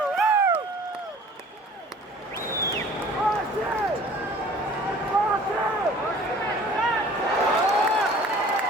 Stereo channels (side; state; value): both; normal; correlation 0.49